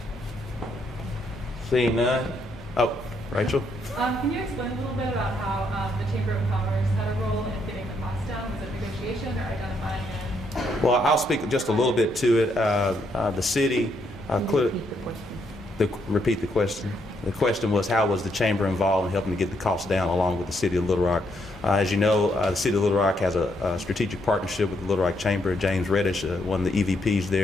Seeing none. Oh, Rachel. Can you explain a little bit about how the Chamber of Commerce had a role in getting the cost down? Was it negotiation or identifying it? Well, I'll speak just a little bit to it. The city, repeat the question. The question was, how was the Chamber involved in helping to get the cost down along with the City of Little Rock? As you know, the City of Little Rock has a strategic partnership with the Little Rock Chamber. James Reddish, one of the EVPs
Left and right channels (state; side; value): normal; both; correlation 0.75